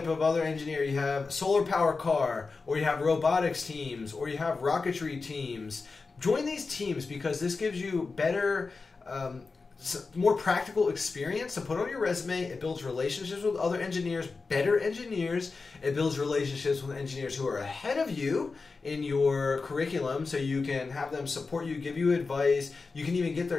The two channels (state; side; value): quieter; right; 4.2 dB